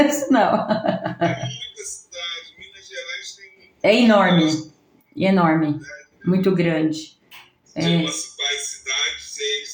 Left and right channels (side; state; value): both; identical; correlation 1.00